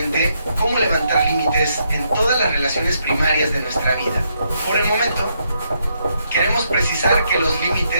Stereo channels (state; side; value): inverted; both; correlation -0.77